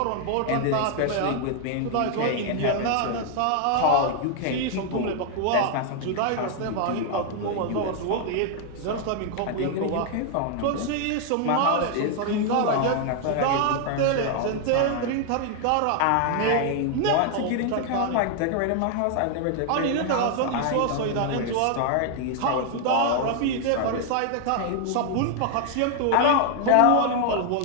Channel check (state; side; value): different; both; correlation 0.00